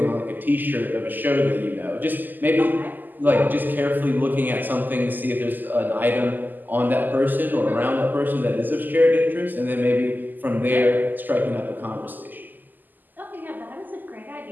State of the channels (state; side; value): late; left; 0.087 ms